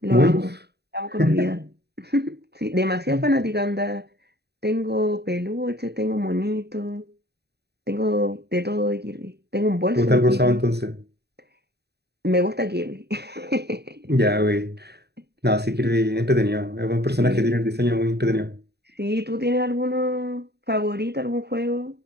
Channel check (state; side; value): late; left; 0.48 ms